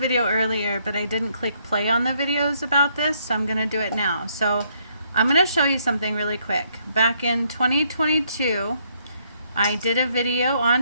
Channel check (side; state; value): both; inverted; correlation -0.70